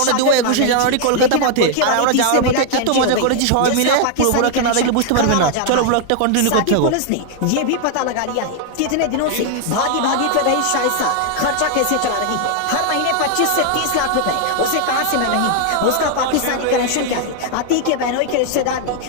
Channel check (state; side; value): different; both; correlation 0.00